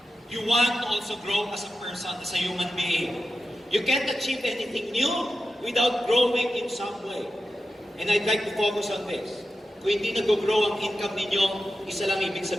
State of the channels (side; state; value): both; normal; correlation 0.92